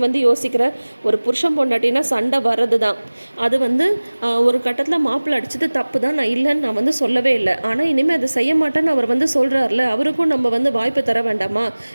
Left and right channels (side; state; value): both; inverted; correlation -1.00